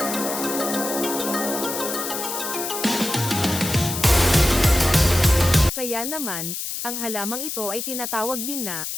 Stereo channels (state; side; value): noise; left; hiss, 5 dB below the sound